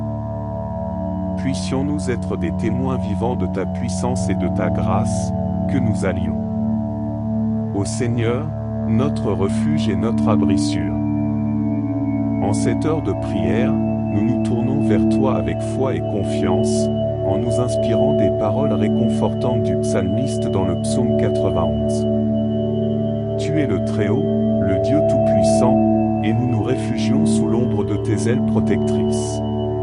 Puissions-nous être des témoins vivants de ta puissance et de ta grâce, que nous allions. Ô Seigneur, notre refuge et notre abri sûr. En cette heure de prière, nous nous tournons vers toi avec foi et confiance, en nous inspirant des paroles réconfortantes du psalmiste dans le psaume 91. Tu es le Très-Haut, le Dieu Tout-Puissant, et nous nous réfugions sous l'ombre de tes ailes protectrices.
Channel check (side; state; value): both; identical; correlation 1.00